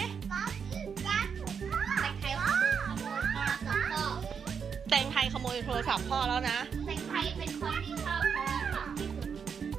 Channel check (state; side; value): quieter; left; 6.6 dB